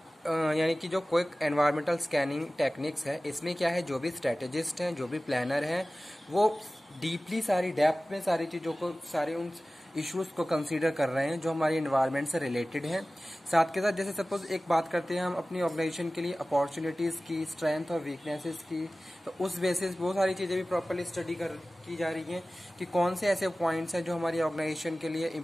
यानी कि जो quick environmental scanning techniques है, इसमें क्या है, जो भी स्ट्रेटेजिस्ट हैं, जो भी प्लानर हैं, वो डीपली सारी डेप्थ में सारी चीज़ों को, सारे उन इश्यूज को कंसीडर कर रहे हैं जो हमारी एनवायरनमेंट से रिलेटेड हैं। साथ के साथ जैसे सपोज एक बात करते हैं हम अपनी ऑर्गेनाइजेशन के लिए अपॉर्चुनिटीज की, स्ट्रेंथ और वीकनेसेस की, तो उस बेसिस बहुत सारी चीजें भी प्रॉपरली स्टडी की जा रही हैं कि कौन से ऐसे पॉइंट्स हैं जो हमारी ऑर्गेनाइजेशन के लिए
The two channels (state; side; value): normal; both; correlation 0.97